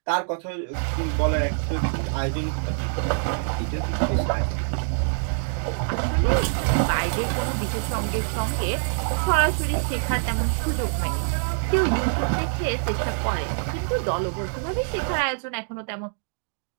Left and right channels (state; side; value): silent; left; digital silence